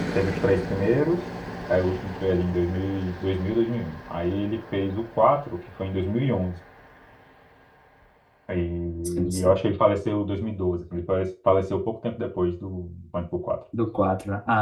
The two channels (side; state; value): both; identical; correlation 1.00